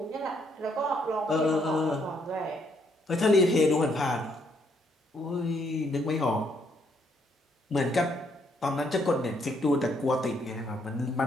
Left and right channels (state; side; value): normal; both; correlation 0.71